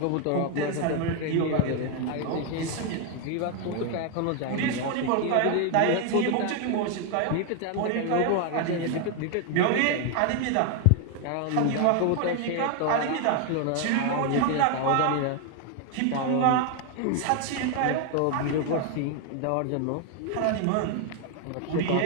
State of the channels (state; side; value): different; both; correlation 0.01